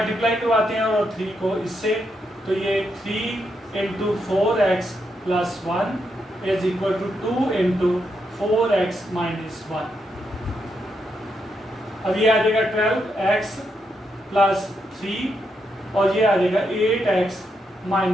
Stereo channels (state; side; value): normal; both; correlation 0.81